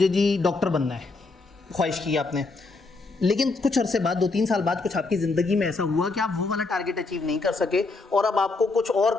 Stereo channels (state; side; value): quieter; right; 3.7 dB